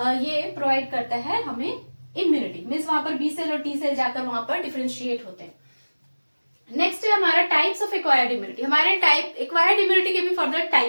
ये प्रोवाइड करता है हमें इम्यूनिटी, मीन्स वहां पर बी सेल और टी सेल जाकर वहां पर डिफरेंशिएट होते हैं। नेक्स्ट है हमारा टाइप्स ऑफ एक्वायर्ड इम्यूनिटी। हमारे टाइप एक्वायर्ड इम्यूनिटी के भी फर्दर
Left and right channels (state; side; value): inverted; both; correlation -1.00